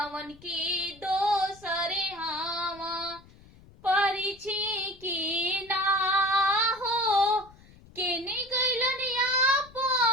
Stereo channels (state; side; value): noise; left; rumble, 24 dB below the sound